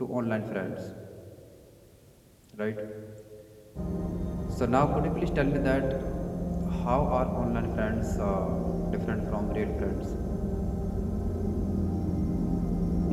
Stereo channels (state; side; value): identical; both; correlation 1.00